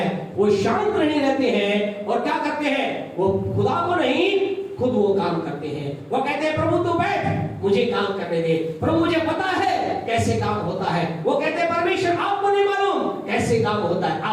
वो शांत नहीं रहते हैं और क्या करते हैं? वो खुदा को नहीं, खुद वो काम करते हैं। वो कहते हैं, प्रभु तू बैठ, मुझे काम करने दे। प्रभु मुझे पता है कि कैसे काम होता है। वो कहते हैं परमेश्वर आपको नहीं मालूम कैसे काम होता है।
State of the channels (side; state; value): both; identical; correlation 1.00